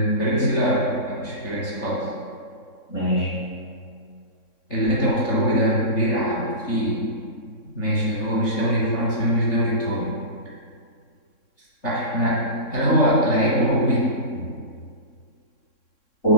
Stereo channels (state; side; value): late; right; 3.6 ms